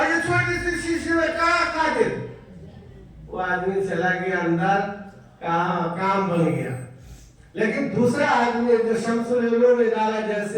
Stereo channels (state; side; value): identical; both; correlation 1.00